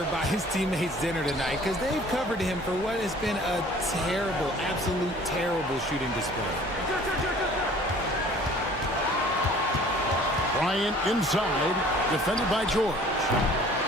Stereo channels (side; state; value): both; normal; correlation 0.50